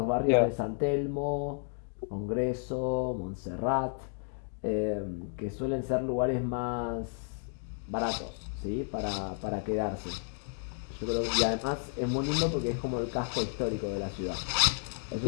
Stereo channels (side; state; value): right; silent; 56 dB below the other